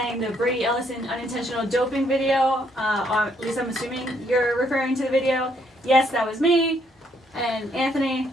the Brady Ellison unintentional doping video. Or at least I'm assuming you're referring to the video. Yes, that was me. And Anthony,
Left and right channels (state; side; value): normal; both; correlation 0.70